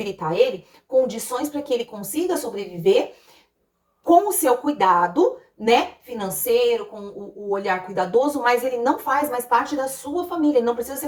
ele condições para que ele consiga sobreviver com o seu cuidado, né, financeiro, com o olhar cuidadoso, mas ele não faz mais parte da sua família, ele não precisa ser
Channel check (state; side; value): identical; both; correlation 1.00